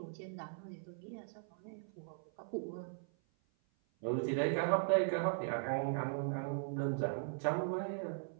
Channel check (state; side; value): silent; left; 52 dB below the other